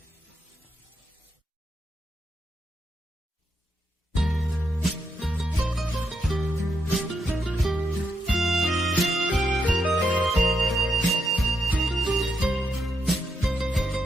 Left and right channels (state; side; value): normal; both; correlation 0.81